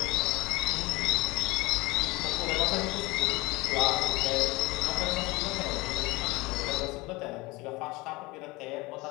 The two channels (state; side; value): quieter; right; 22.9 dB